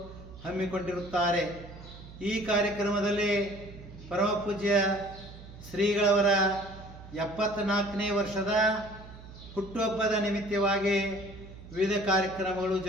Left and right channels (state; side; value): noise; right; hum, 16 dB below the sound